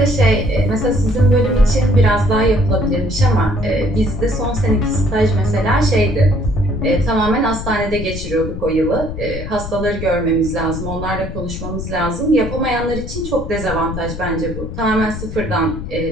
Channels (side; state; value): left; noise; rumble, 8 dB below the sound